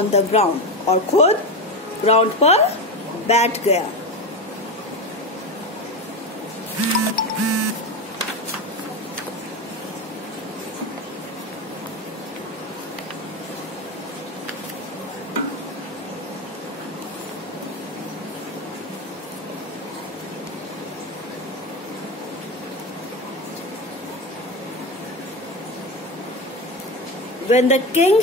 the ground, और खुद ग्राउंड पर बैठ गया। When the king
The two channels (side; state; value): both; normal; correlation 0.19